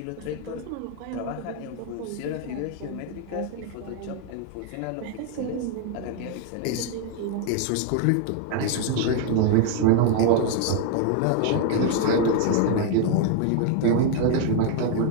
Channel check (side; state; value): both; different; correlation 0.00